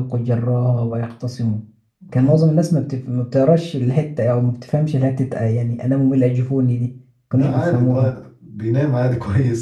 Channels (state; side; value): identical; both; correlation 1.00